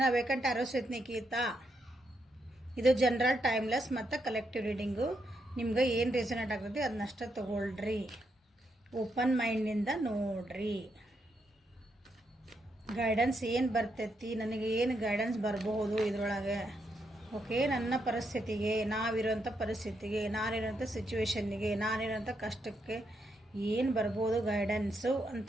vacant arrows with Nikhita. ಇದು ಜನರಲ್ ಟೈಮ್ಲೆಸ್ ಮತ್ತು ಕಲೆಕ್ಟಿವ್ ರೀಡಿಂಗು. ನಿಮ್ಗೆ ಏನು ರೆಸನೇಟ್ ಆಗ್ತದೆ ಅದನ್ನಷ್ಟೇ ತೊಗೊಳ್ರಿ, ಓಪನ್ ಮೈಂಡಿಂದ ನೋಡ್ರಿ. ಗೈಡೆನ್ಸ್ ಏನು ಬರ್ತೈತಿ, ನನಗೆ ಏನು ಗೈಡೆನ್ಸ್ ಬರಬಹುದು ಇದರೊಳಗೆ. ಓಕೆ, ನನ್ನ ಪರಿಸ್ಥಿತಿಗೆ, ನಾವಿರೋಂಥ ಪರಿಸ್ಥಿತಿಗೆ, ನಾನಿರೋಂಥ ಸಿಚುವೇಶನ್ನಿಗೆ, ನಾನಿರೋಂಥ ಕಷ್ಟಕ್ಕೆ ಏನು ಬರ್ಬೋದು ಗೈಡೆನ್ಸು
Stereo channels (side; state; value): both; normal; correlation 0.80